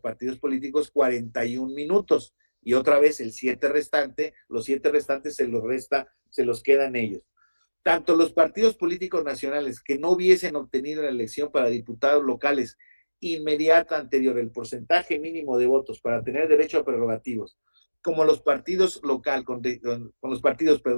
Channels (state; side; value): inverted; both; correlation -1.00